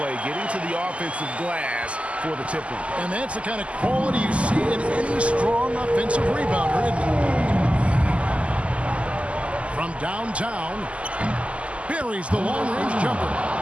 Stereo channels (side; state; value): left; late; 0.060 ms